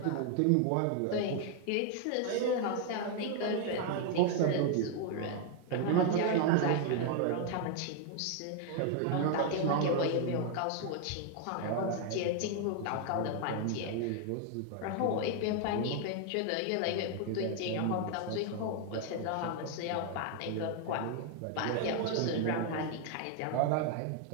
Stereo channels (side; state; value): both; different; correlation 0.01